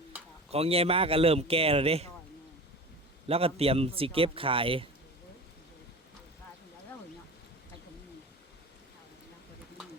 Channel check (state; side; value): normal; both; correlation 0.34